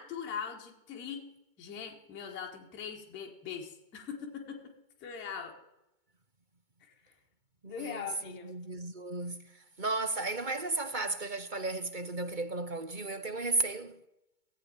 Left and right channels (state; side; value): late; left; 2.2 ms